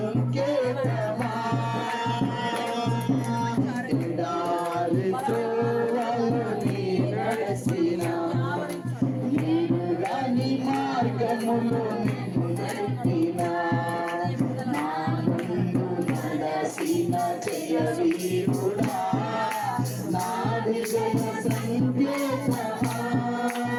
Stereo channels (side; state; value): both; identical; correlation 1.00